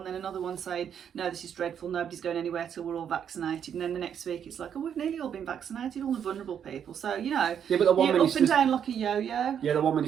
then another one saying no, this is dreadful, nobody's going anywhere till we're all vaccinated. And then the next week it's like, oh, we've nearly all been vaccinated, all the vulnerable people. So you know, but the one you're up and down like a yo-yo. Yeah, the one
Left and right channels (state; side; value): quieter; left; 8.5 dB